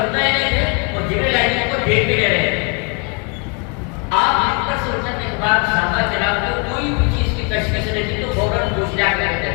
رہے نہیں تھے اور جبریل امین کو دیکھ بھی نہیں رہے تھے. آپ ان پر سننے کے بعد صحابہ کرام کو کوئی بھی چیز کی تشخیص نہیں تھی تو فوراً پوچھ لیا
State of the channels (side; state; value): right; quieter; 33.3 dB